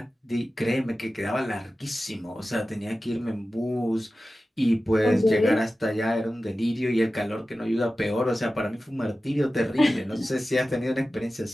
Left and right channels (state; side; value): normal; both; correlation 0.95